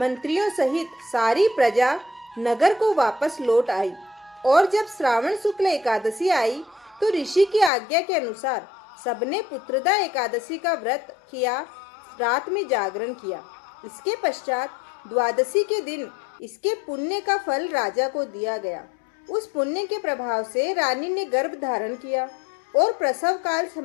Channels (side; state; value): right; drops out; at 7.7 s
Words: सहित सारी प्रजा नगर को वापस लौट आई और जब श्रावण शुक्ल एकादशी आई तो ऋषि की आज्ञा के अनुसार सबने पुत्रदा एकादशी का व्रत किया, रात में जागरण किया। इसके पश्चात द्वादशी के दिन इसके पुण्य का फल राजा को दिया गया। उस पुण्य के प्रभाव से रानी ने गर्भ धारण किया और प्रसव काल